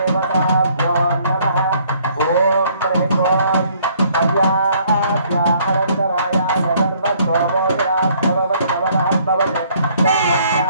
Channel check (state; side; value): inverted; both; correlation -0.63